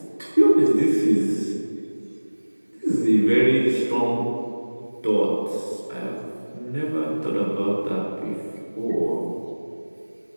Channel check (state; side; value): inverted; both; correlation -1.00